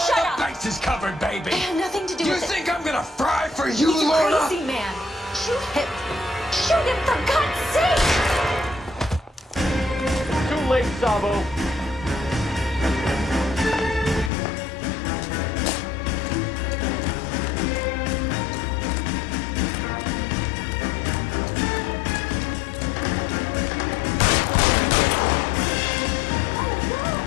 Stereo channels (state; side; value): drops out; right; at 14.3 s